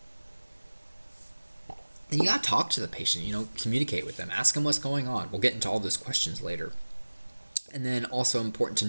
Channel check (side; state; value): both; inverted; correlation -1.00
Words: And you gotta talk to the patient, communicate with them, ask them what's going on. We'll get into all those questions later. And then also important to